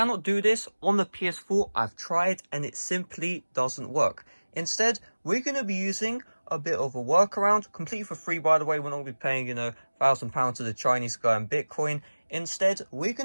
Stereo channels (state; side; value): inverted; both; correlation -1.00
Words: do this on the PS4. I've tried and it simply doesn't work. Instead, we're going to be using a bit of a workaround, completely for free by the way. We're not going to be paying, £1,000 to the Chinese guy in Bitcoin. Instead, we're